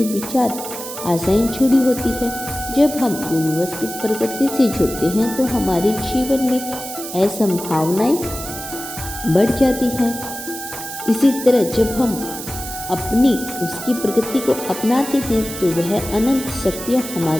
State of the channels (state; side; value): noise; right; hiss, 9 dB below the sound